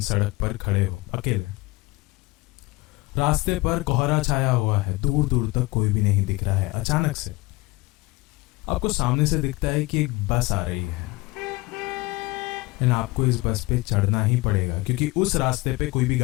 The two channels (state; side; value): quieter; right; 22.7 dB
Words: सड़क पर खड़े हो अकेले। रास्ते पर कोहरा छाया हुआ है, दूर दूर तक कोई भी नहीं दिख रहा है। अचानक से आपको सामने से दिखता है कि एक बस आ रही है एंड आपको इस बस पे चढ़ना ही पड़ेगा क्योंकि उस रास्ते पे कोई भी